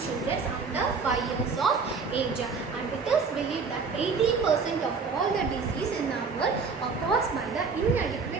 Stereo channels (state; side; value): quieter; left; 4.9 dB